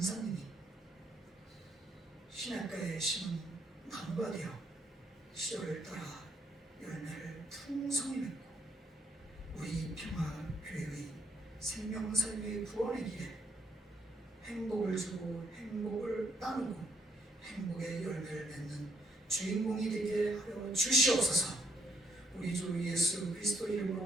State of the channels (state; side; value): normal; both; correlation 0.72